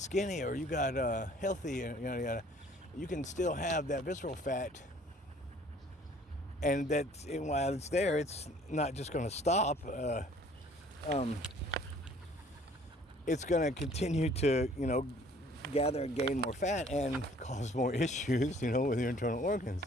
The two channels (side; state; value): both; normal; correlation 0.56